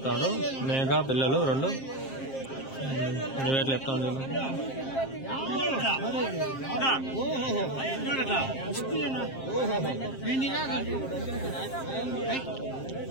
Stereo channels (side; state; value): right; late; 7.5 ms